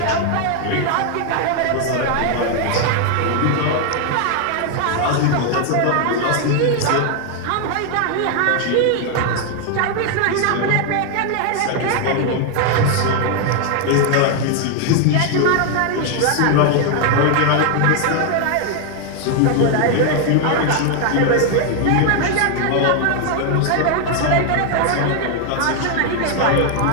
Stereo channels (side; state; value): both; different; correlation 0.00